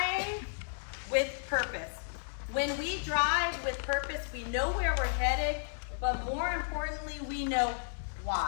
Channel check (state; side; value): silent; right; digital silence